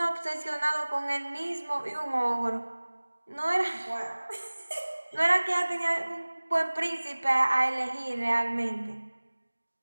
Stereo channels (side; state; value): both; inverted; correlation -1.00